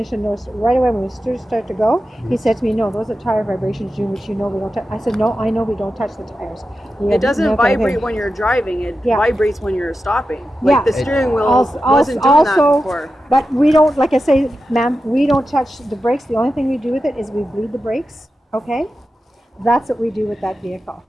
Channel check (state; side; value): normal; both; correlation 0.91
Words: noticed right away when we start to go. He said to me, "No, those are tire vibrations, June, which you know we don't touch." I said, "No, I know we don't touch the tires." It doesn't vibrate when you're driving. It vibrates when you're stopping. Like the steering wheel wasn't doing that before. But we don't, like I say, ma'am, we don't touch the brakes. The only thing we do with it is we bleed the brakes. Okay. That's what we do with that vehicle,